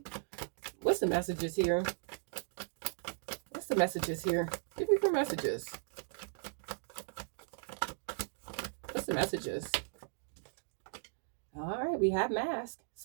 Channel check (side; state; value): left; silent; digital silence